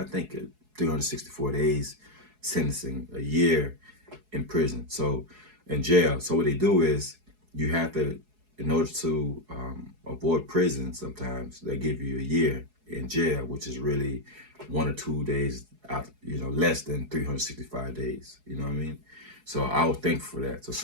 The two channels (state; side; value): late; left; 4.7 ms